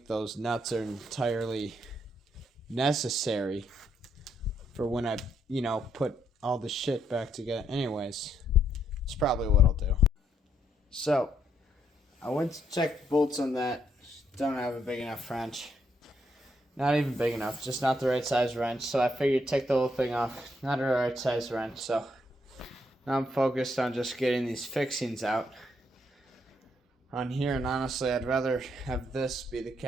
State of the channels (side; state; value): both; normal; correlation 0.74